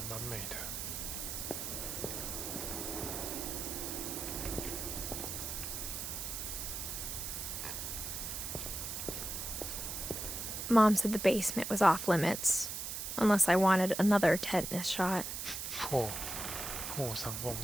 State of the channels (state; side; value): noise; right; hiss, 5 dB below the sound